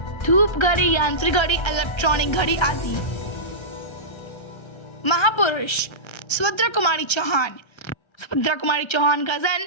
धूप घड़ी, यांत्रिक घड़ी, इलेक्ट्रॉनिक घड़ी आदि। महापुरुष, सुभद्रा कुमारी चौहान का जन्म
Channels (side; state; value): right; late; 1.3 ms